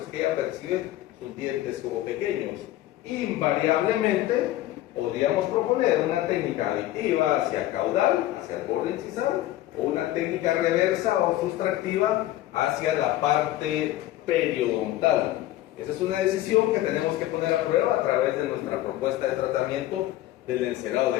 es que ella percibe sus dientes como pequeños. Invariablemente podríamos proponer una técnica aditiva hacia caudal, hacia el borde incisal, o una técnica reversa o sustractiva hacia la parte periodontal. Esa es una decisión que tenemos que poner a prueba a través de nuestra propuesta de tratamiento del encerado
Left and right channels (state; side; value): quieter; right; 14.8 dB